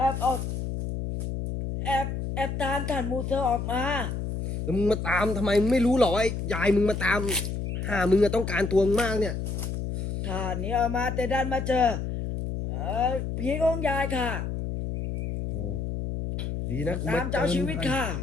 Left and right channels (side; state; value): left; noise; hum, 3 dB below the sound